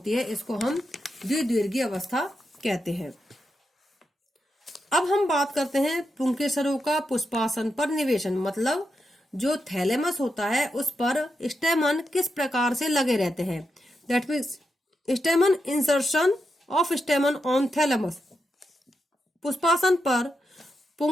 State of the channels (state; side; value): normal; both; correlation 0.85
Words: है इसको हम द्विदीर्घी अवस्था कहते हैं। अब हम बात करते हैं पुंकेसरों का पुष्पासन पर निवेशन, मतलब जो थैलेमस होता है उस पर स्टेमन किस प्रकार से लगे रहते हैं। That means stamen insertion of stamen on thalamus. पुष्पासन पर